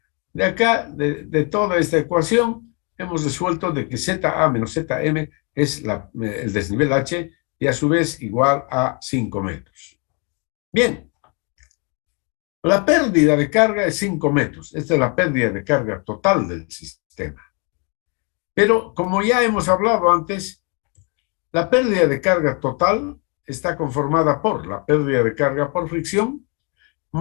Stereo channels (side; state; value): right; quieter; 34.3 dB